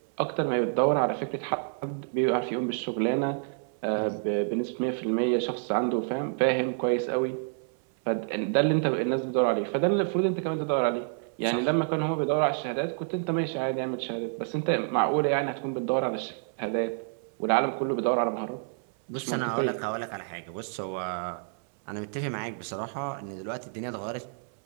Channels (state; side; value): silent; left; 59 dB below the other